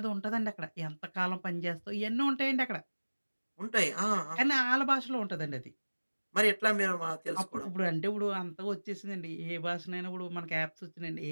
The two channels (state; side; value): inverted; both; correlation -1.00